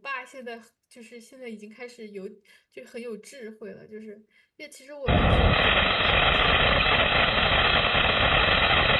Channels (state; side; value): identical; both; correlation 1.00